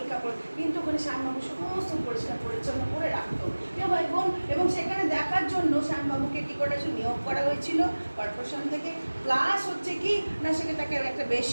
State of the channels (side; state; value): both; inverted; correlation -1.00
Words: কাপড়, কিন্তু ওখানে শ্যামবাবু সমস্ত পরিষ্কার পরিচ্ছন্ন করে রাখতো। কেউ ভাই বোন, এবং সেখানে দেখার জন্য শ্যামবাবুকে কী করে নিয়োগ করা হয়েছিল কর্পোরেশন থেকে। প্লাস হচ্ছে কি না, সেখানে তাকে একটা